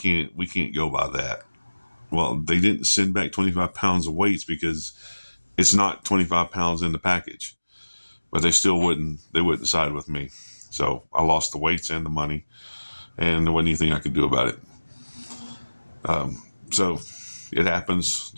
go by that." Well, they didn't send back 25 pounds of weights because it's not 25 pounds in the package, but they wouldn't side with me. So I lost the weights and the money, and there wasn't anything I could do about it. So it happens.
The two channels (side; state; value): both; inverted; correlation -1.00